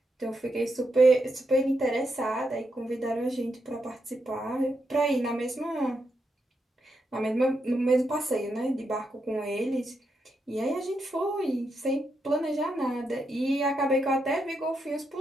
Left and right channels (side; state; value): both; normal; correlation 0.83